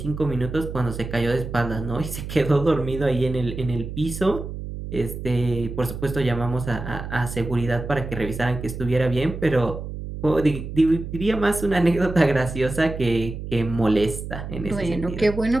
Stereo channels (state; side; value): noise; right; hum, 8 dB below the sound